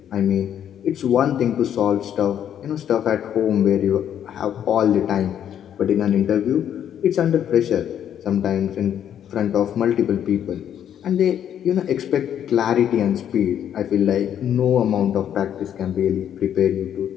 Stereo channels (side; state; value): right; quieter; 9.7 dB